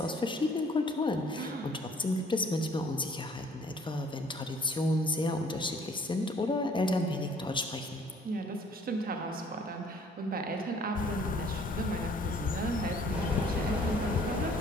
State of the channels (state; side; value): normal; both; correlation 0.57